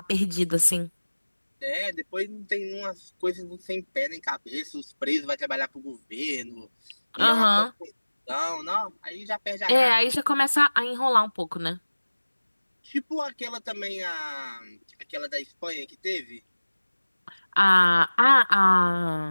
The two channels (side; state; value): both; inverted; correlation -1.00